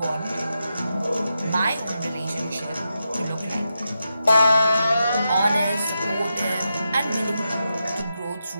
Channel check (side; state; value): both; inverted; correlation -0.87